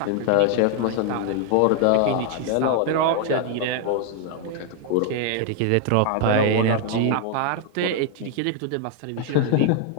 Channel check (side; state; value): both; different; correlation 0.00